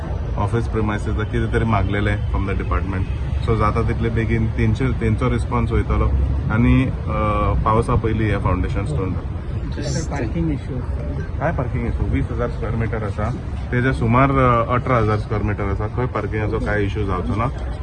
office premises कितें तरी मागलेले from the department. So जाता तितले बेगीन तेंचो response वयतलो आनी पावसा पयलीं हे फावंडेशन स्टोन जाता. पार्किंग इश्यू काय पार्किंग इश्यू 20,000 स्क्वेअर मीटर आसा, तेजे सुमार 18,000 स्क्वेअर मीटर आसा. खंय पार्किंगाचो काय इश्यू जावचो ना.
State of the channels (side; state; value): both; identical; correlation 1.00